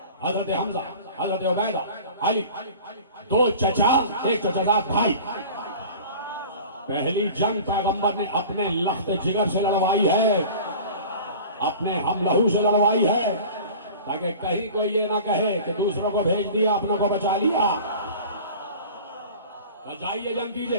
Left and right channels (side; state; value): both; inverted; correlation -0.39